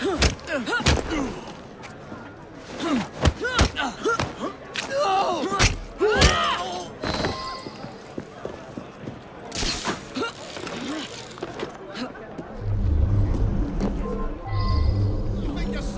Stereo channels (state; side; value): identical; both; correlation 1.00